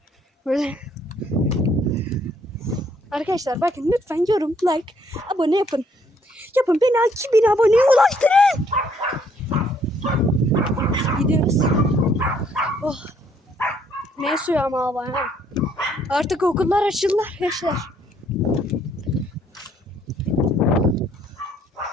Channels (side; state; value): both; normal; correlation 0.66